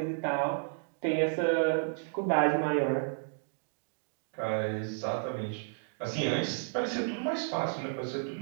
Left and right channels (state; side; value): silent; left; digital silence